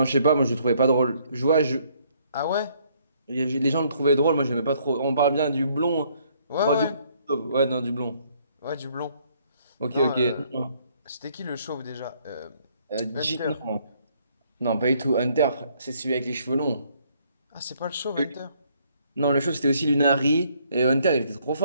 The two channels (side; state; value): both; inverted; correlation -0.66